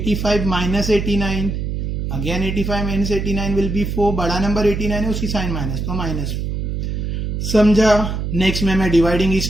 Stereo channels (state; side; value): noise; right; hum, 3 dB below the sound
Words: minus 89, again 85 minus 89 will be 4. बड़ा नंबर 89 है, उसकी साइन माइनस तो -4. समझा. नेक्स्ट में मैं डिवाइडिंग